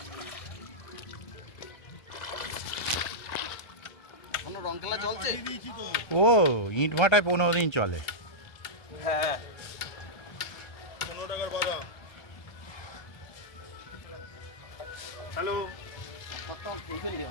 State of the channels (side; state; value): right; late; 1.3 ms